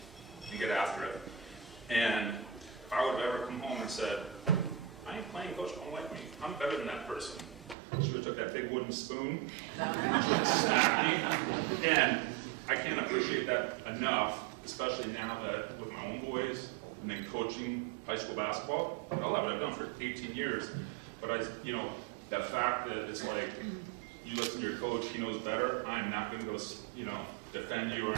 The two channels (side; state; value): left; drops out; at 7.8 s